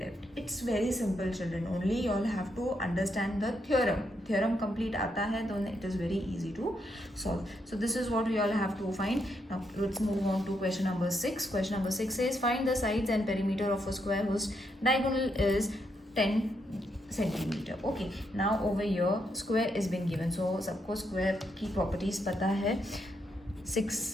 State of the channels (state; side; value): normal; both; correlation 0.79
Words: It's very simple, children. Only you all have to understand the theorem. Theorem complete आता है तो it is very easy to solve. So this is what we all have to find. Now let's move on to question number 6. Question number 6 says find the sides and perimeter of a square whose diagonal is 10 centimeter. Okay, now over here square is been given. So सबको square की properties पता है.